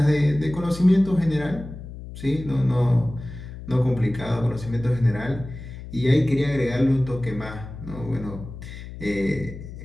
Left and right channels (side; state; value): left; noise; hum, 12 dB below the sound